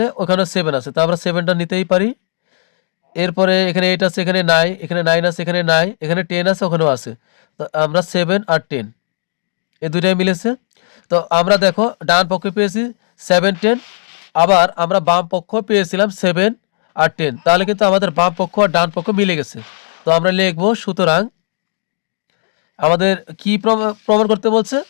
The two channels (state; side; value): silent; right; digital silence